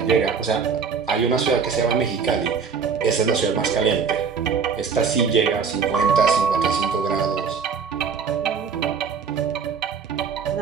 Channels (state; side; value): quieter; left; 6.0 dB